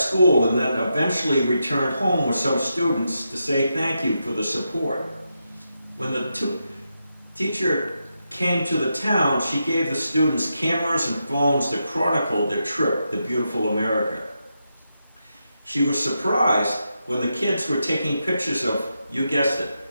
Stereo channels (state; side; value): inverted; both; correlation -0.85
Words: and then eventually returned home with some students to say thank you for the support. When the teacher came to the town, she gave the students cameras and phones to chronicle their trip to beautiful America. She was surprised when the kids were taking pictures of, you guessed